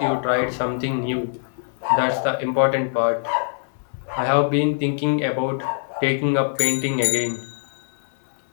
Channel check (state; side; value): silent; right; 58 dB below the other